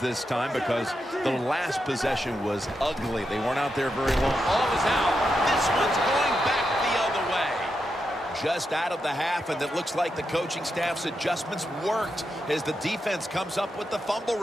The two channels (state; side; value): normal; both; correlation 0.86